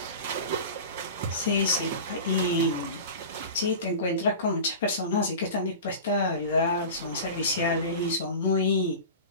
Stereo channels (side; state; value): both; inverted; correlation -0.33